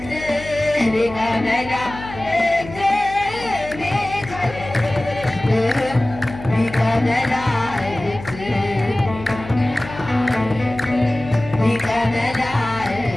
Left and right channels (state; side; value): noise; left; hum, 14 dB below the sound